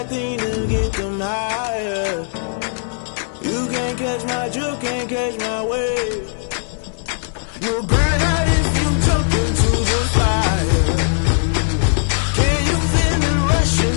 thing to get them higher. You can't catch my drift, can't catch my wave. You're burning out in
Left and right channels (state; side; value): silent; right; digital silence